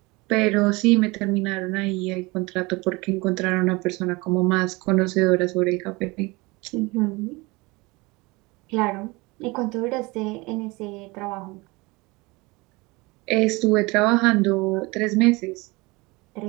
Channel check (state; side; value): quieter; left; 24.2 dB